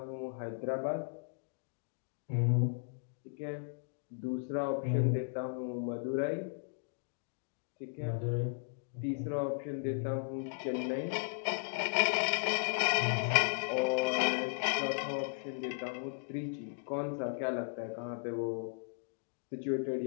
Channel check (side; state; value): right; silent; digital silence